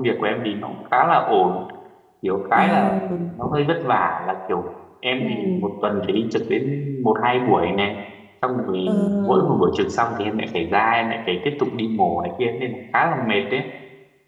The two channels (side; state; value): both; identical; correlation 1.00